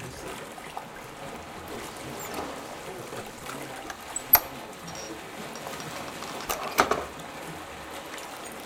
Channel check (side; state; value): both; identical; correlation 1.00